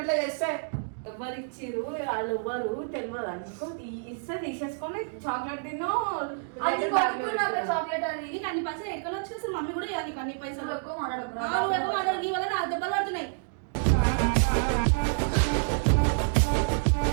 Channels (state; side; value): silent; left; digital silence